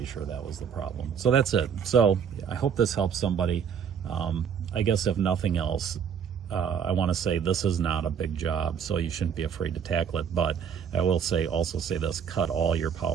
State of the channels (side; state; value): left; quieter; 7.5 dB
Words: sure that was the problem. So that's it. So I hope this helps somebody. I guess if nothing else, I want to say this is not a big job, so you shouldn't be afraid to tackle it. But I will also say this: cut all your